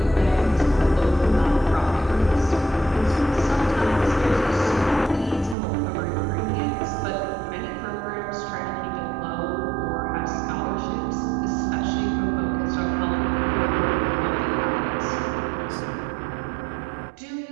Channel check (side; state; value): left; drops out; at 5.6 s